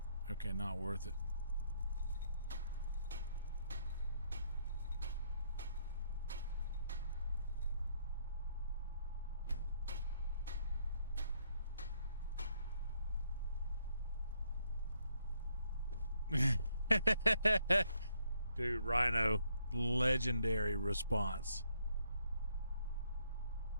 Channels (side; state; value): both; inverted; correlation -0.73